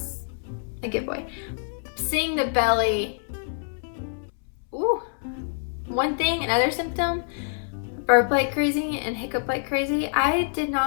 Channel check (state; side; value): silent; right; 61 dB below the other